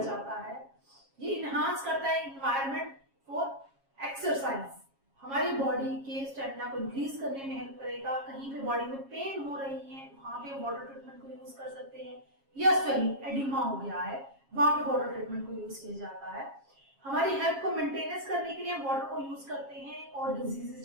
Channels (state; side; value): late; left; 7.3 ms